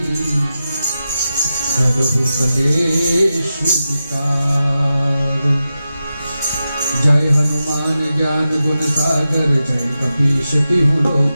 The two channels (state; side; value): inverted; both; correlation -0.91